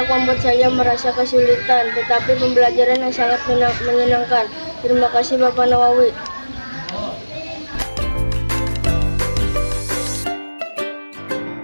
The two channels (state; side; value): inverted; both; correlation -1.00